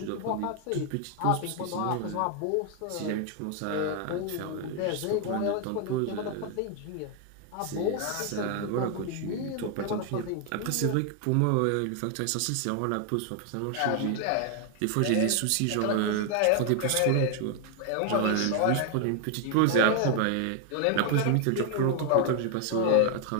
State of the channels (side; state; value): both; different; correlation 0.00